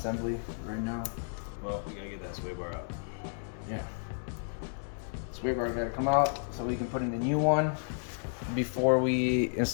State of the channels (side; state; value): right; silent; digital silence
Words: right now. Well, we gotta get that sway bar up. Yeah. Sway bar gotta come out so we can put in the new one before we